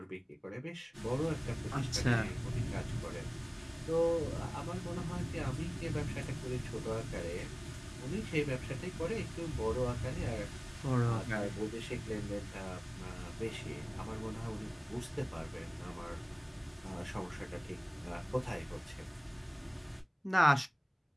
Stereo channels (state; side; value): identical; both; correlation 1.00